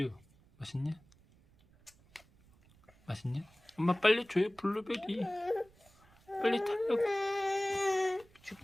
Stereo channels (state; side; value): noise; right; rumble, 29 dB below the sound